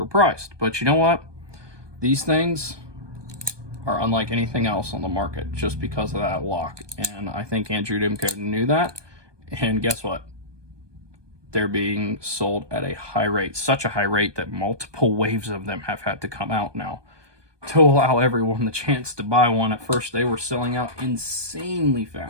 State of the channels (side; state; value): left; late; 1.2 ms